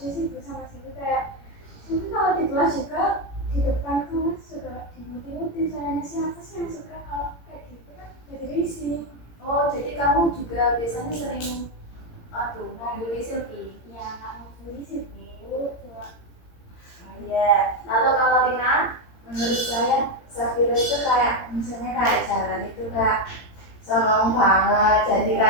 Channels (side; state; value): right; late; 18 ms